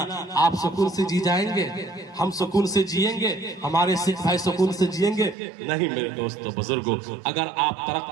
आप सुकून से जी जाएंगे? हम सुकून से जिएंगे? हमारे सिख भाई सुकून से जिएंगे? नहीं मेरे दोस्तों बुजुर्गों, अगर आप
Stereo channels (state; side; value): drops out; left; at 5.4 s